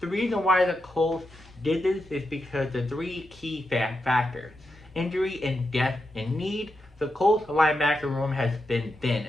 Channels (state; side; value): normal; both; correlation 0.87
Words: the reason why the Colts did this is because the three key factors: injury and death and need. The Colts linebacker room has been thin,